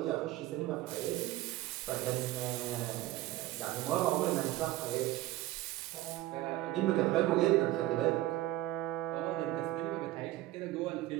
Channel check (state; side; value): quieter; left; 16.2 dB